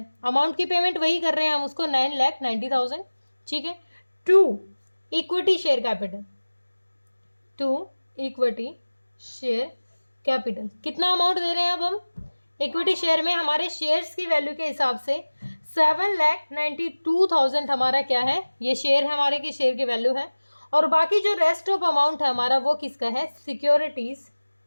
अमाउंट की पेमेंट वही कर रहे हैं हम उसको 9,90,000। ठीक है, to equity share capital, to equity share capital कितना अमाउंट दे रहे हैं, अब हम इक्विटी शेयर में हमारे शेयर्स की वैल्यू के हिसाब से 7,92,000 हमारा क्या है, ये शेयर है हमारे की शेयर की वैल्यू है, और बाकी जो रेस्ट ऑफ अमाउंट है हमारा वो किसका है, सिक्योरिटीज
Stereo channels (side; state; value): both; inverted; correlation -1.00